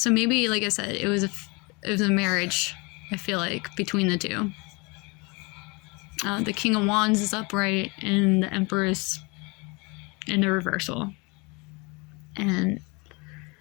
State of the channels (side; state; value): right; quieter; 28.2 dB